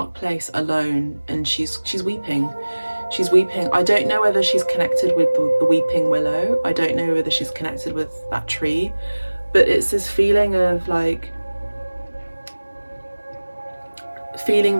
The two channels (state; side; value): inverted; both; correlation -1.00